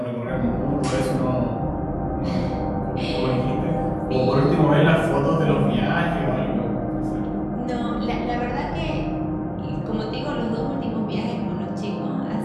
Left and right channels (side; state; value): both; identical; correlation 1.00